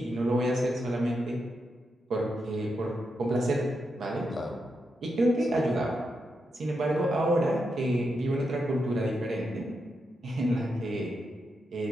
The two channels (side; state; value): both; normal; correlation 0.85